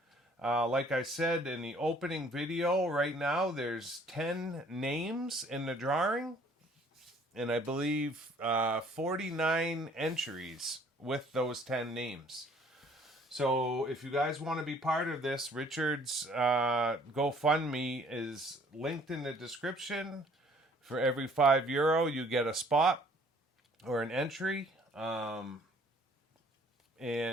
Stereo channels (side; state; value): both; normal; correlation 0.58